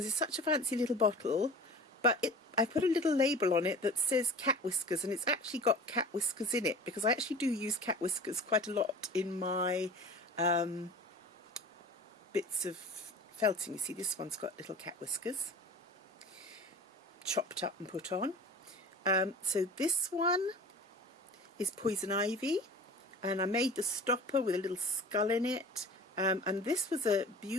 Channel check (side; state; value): both; normal; correlation 0.39